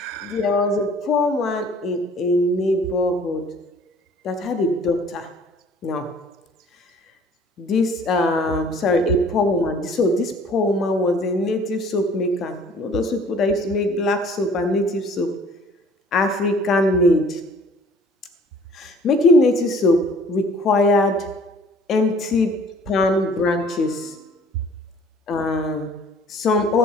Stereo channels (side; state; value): both; normal; correlation 0.53